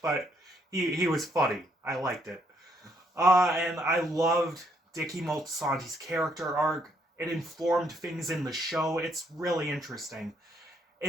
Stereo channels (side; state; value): both; normal; correlation 0.71